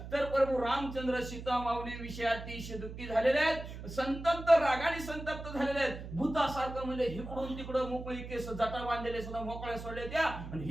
तर प्रभू रामचंद्र सीतामाऊली विषयी अतिशय दुःखी झालेले आहेत संतप्त रागाने संतप्त झालेले आहेत. भूतासारखं म्हणजे इकडून तिकडं मोकळी केस जटा बांधलेले सुद्धा मोकळ्या सोडले त्या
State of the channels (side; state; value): right; noise; hum, 10 dB below the sound